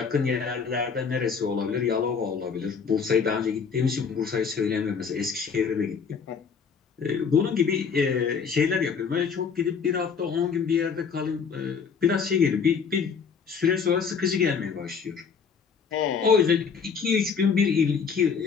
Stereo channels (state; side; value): quieter; right; 6.1 dB